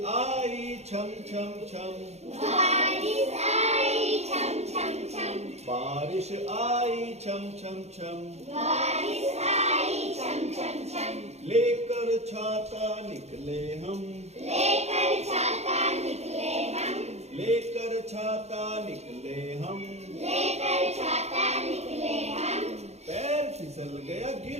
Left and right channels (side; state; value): left; late; 0.31 ms